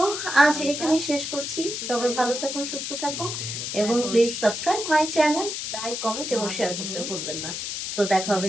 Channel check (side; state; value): left; noise; hiss, 5 dB below the sound